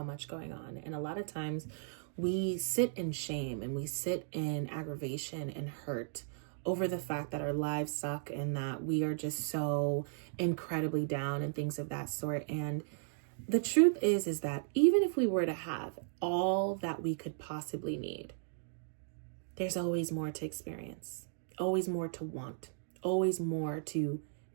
much going on. And a lot of times we sit in shame and we sit in aggravation and hurt over the fact that our lives suck and that we are just so incredibly down and things of that sort. And the truth is that even if we were to have all that we could possibly need, there's always more to experience, always more to want, always more to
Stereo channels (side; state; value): left; silent; digital silence